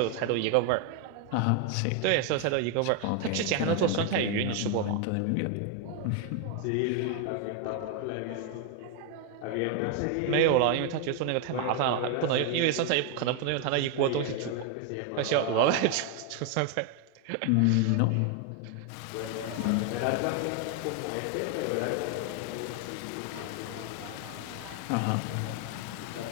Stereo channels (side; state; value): both; different; correlation 0.01